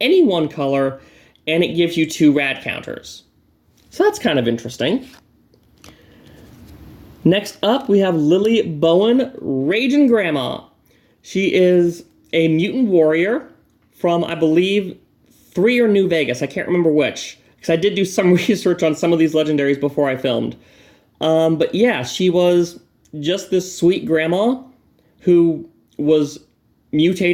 one color, and it gives you 2 rad counters. So that's kind of interesting. Next up, we have Lily Bowen, Raging Grandma. She is a mutant warrior from, I believe, 3 or New Vegas. I can't remember which, because I did do some research on some of these legendaries before I filmed. But yeah, she was just this sweet grandma who was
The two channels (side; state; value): both; identical; correlation 1.00